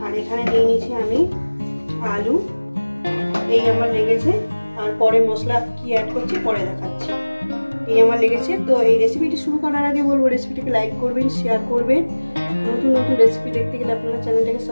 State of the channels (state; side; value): inverted; both; correlation -1.00